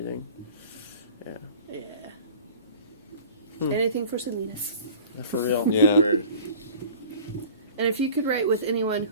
Yeah. Hmm. Anything for Selena's. For real. Yeah. Word. And if you could write with anyone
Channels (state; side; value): inverted; both; correlation -0.44